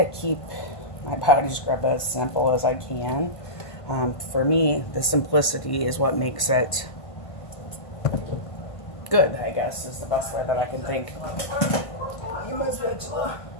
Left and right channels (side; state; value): right; late; 1.5 ms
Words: keep my body scrub as simple as I can. For me, the simplicity is what makes it good, I guess, is the best way that I can think. My spatula,